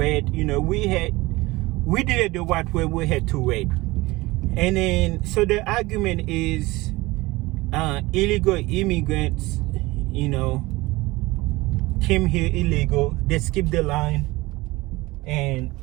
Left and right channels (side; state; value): left; quieter; 21.0 dB